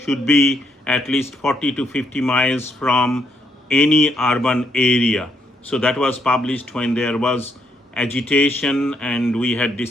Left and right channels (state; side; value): normal; both; correlation 0.74